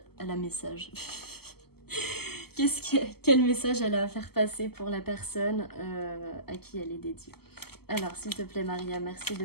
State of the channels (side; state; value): right; late; 0.96 ms